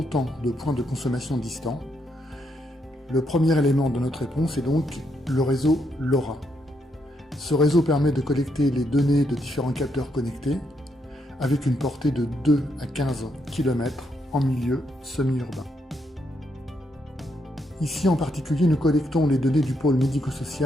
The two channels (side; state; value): both; normal; correlation 0.77